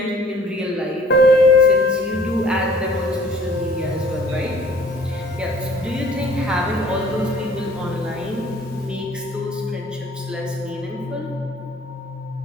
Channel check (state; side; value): normal; both; correlation 0.53